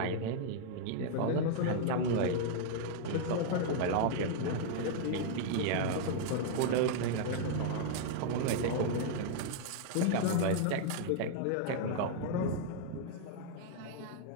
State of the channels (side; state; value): both; different; correlation -0.01